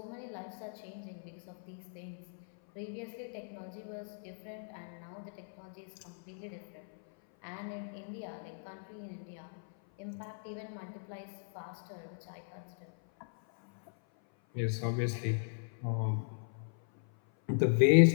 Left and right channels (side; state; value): right; silent; 53 dB below the other